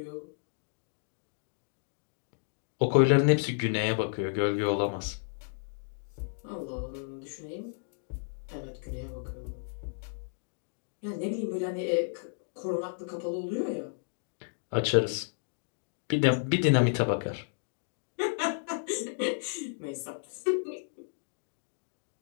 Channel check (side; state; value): right; silent; digital silence